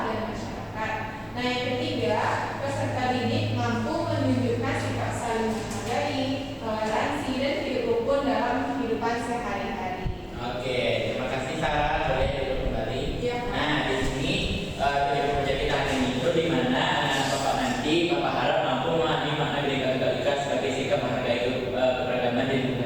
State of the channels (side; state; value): both; identical; correlation 1.00